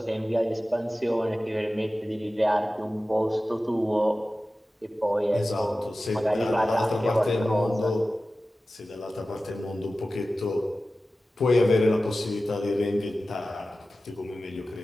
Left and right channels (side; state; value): both; normal; correlation 0.95